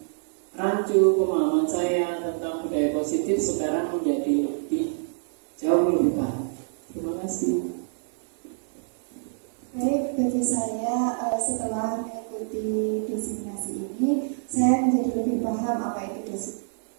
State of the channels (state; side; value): silent; left; digital silence